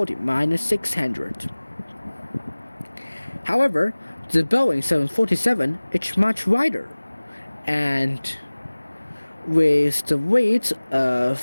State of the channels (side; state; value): both; inverted; correlation -1.00